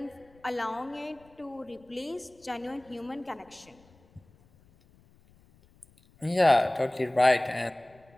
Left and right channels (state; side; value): noise; left; rumble, 29 dB below the sound